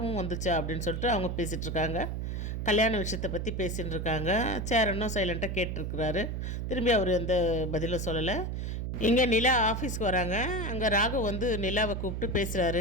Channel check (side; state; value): right; noise; hum, 3 dB below the sound